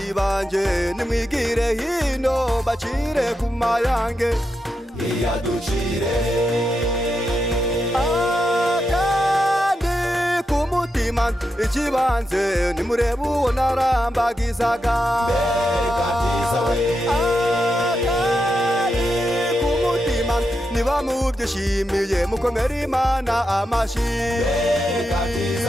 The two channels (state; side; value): normal; both; correlation 0.86